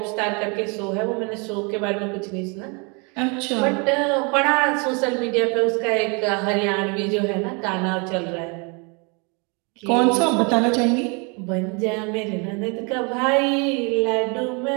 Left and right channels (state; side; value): quieter; left; 32.5 dB